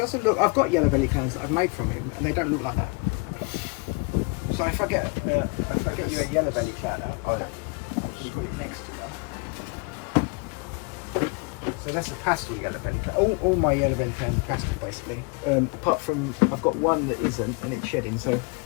look. I've got yellow belly clowns that I've made from him, and they don't look like that. So if I get you a yellow belly clown out, Oh yeah. I'll just put it next to her. So that's a pastel yellow belly clown. All my yellow belly clowns are pastel basically. Apart from I've got one that isn't, and it's shedding. So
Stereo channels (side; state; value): right; quieter; 29.9 dB